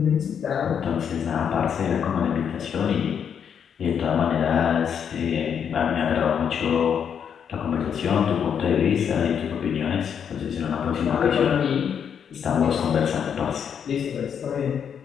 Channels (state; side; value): quieter; right; 7.8 dB